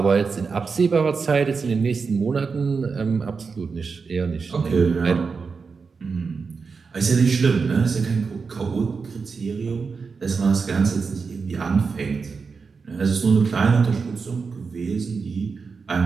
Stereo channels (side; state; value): left; quieter; 5.0 dB